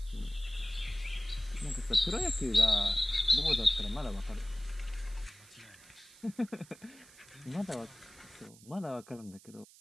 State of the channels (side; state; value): right; noise; hiss, 22 dB below the sound